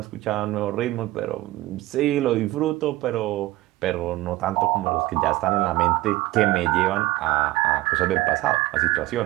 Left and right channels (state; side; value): quieter; left; 17.7 dB